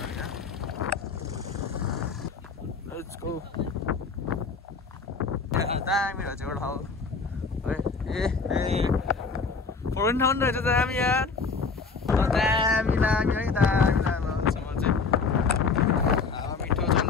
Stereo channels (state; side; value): quieter; right; 4.7 dB